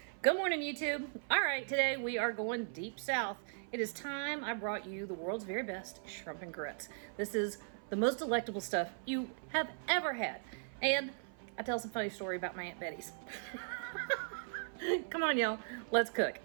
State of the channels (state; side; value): silent; left; 52 dB below the other